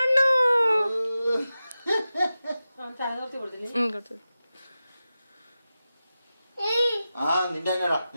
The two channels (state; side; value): inverted; both; correlation -0.94